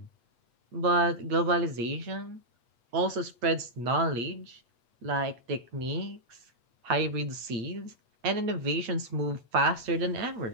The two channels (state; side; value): late; left; 8.3 ms